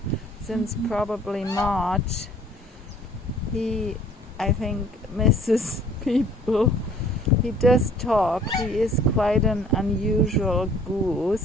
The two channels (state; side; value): normal; both; correlation 0.55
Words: since probably March, he, I think, misses people. He does talk. He is quite an unusual